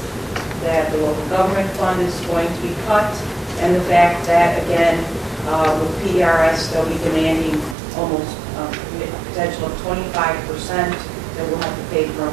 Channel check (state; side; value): drops out; left; at 7.8 s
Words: that the local government fund is going to be cut, and the fact that, again, with PRS, they'll be demanding almost a potential of 25% that we'll have to pay for